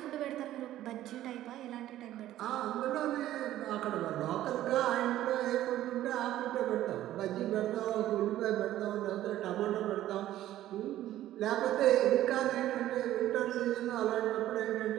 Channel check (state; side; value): quieter; left; 13.5 dB